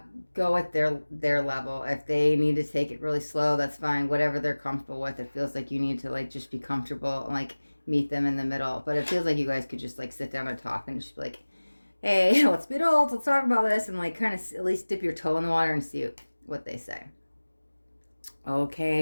go at their level. If they need to take it really slow, that's fine. Whatever they're comfortable with. It feels like you need to like just be comfortable and like meet them in the middle. But it feels like you guys could just like sit down and talk and just be like, hey, let's be adults, let's talk about this, and like kind of at least dip your toe in the water and see what they say.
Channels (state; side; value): inverted; both; correlation -1.00